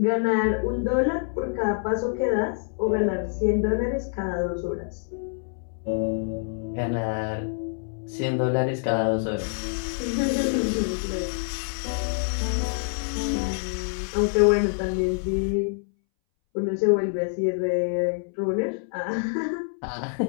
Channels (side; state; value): right; silent; 61 dB below the other